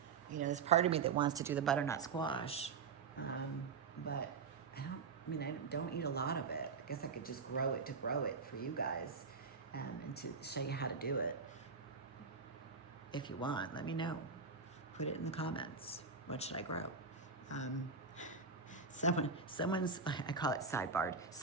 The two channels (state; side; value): quieter; left; 5.2 dB